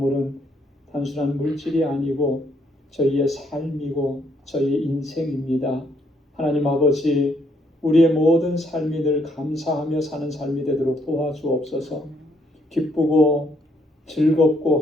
단순한 물질이 아니고 저희의 삶이고 저희의 인생입니다. 하나님 아버지, 우리의 모든 삶이 늘 감사하며 사는 삶이 되도록 도와주옵소서. 기쁘고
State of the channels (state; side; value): normal; both; correlation 0.71